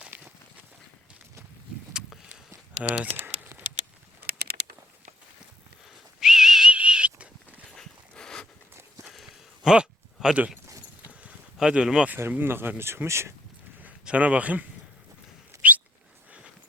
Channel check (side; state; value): both; normal; correlation 0.66